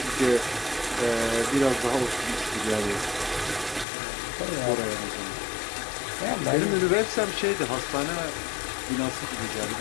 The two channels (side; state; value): right; drops out; at 3.9 s